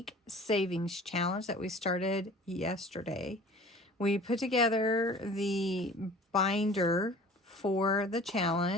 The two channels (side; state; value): both; normal; correlation 0.45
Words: savings challenge that we started yesterday. We put together the binder for the